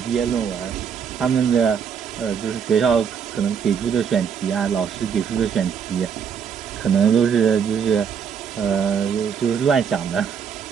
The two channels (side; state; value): left; quieter; 7.1 dB